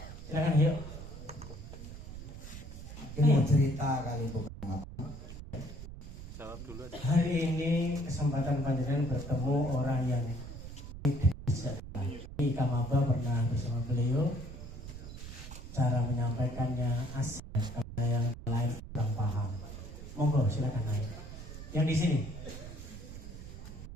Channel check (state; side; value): noise; right; rumble, 11 dB below the sound